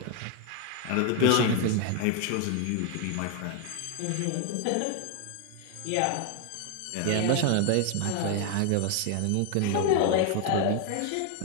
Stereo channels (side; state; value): both; different; correlation 0.00